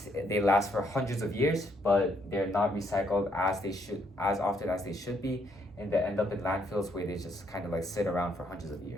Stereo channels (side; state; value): both; normal; correlation 0.72